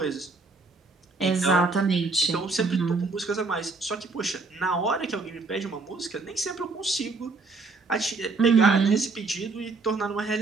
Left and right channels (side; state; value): left; quieter; 3.8 dB